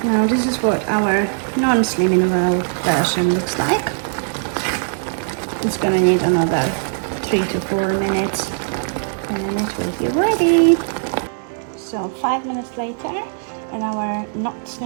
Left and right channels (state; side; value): silent; left; digital silence